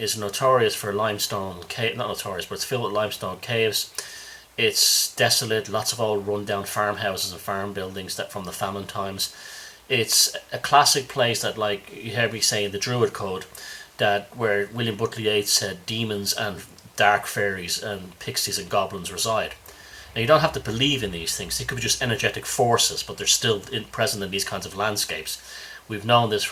notorious for limestone cave. Not notorious, but it's filled with limestone caves. It's desolate, lots of old run-down farmhouses and farm buildings that from the famine times. It's a classic place that, like you heard me say in the Druid Code, that where William Butler Yeats said demons and dark fairies and pixies and goblins reside. Now, you don't have to believe in these things. They could be just energetic forces, but they're still present in these kinds of landscapes. We've known this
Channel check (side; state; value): both; identical; correlation 1.00